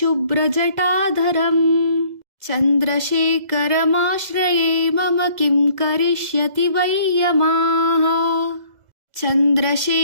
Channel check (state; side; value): late; left; 2.0 ms